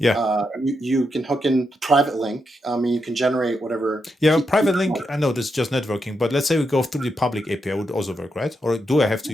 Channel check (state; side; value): normal; both; correlation 0.84